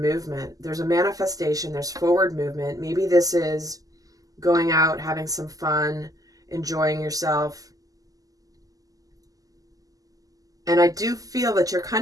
There's a manifestation, there's forward movement. Maybe this is going out, having some fun, enjoying yourself. And I do feel that you're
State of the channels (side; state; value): left; late; 0.17 ms